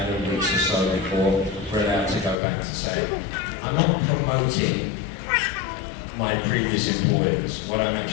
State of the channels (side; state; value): right; drops out; at 2.4 s